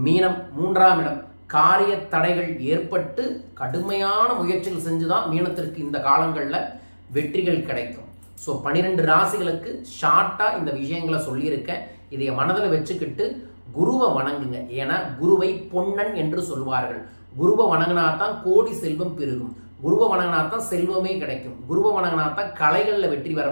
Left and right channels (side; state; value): both; inverted; correlation -1.00